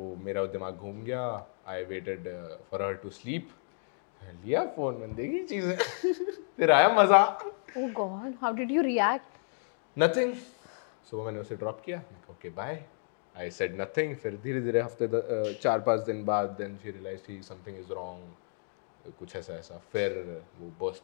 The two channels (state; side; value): silent; right; digital silence